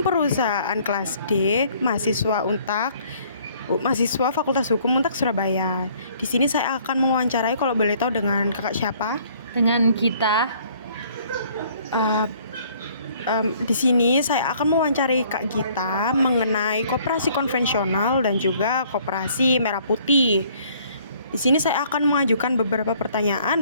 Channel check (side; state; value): both; inverted; correlation -0.59